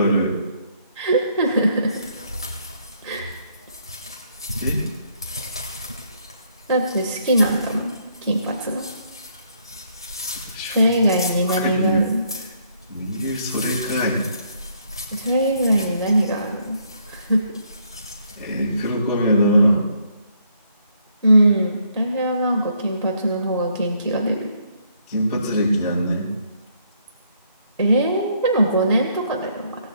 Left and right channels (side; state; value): both; inverted; correlation -0.70